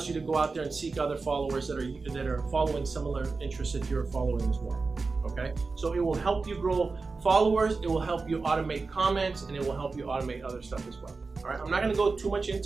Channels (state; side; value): quieter; left; 4.1 dB